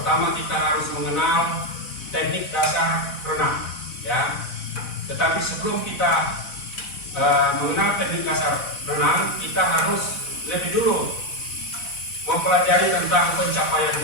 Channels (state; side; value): late; right; 4.0 ms